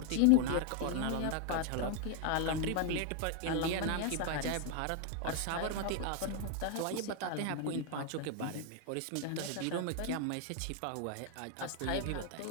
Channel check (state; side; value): different; both; correlation 0.00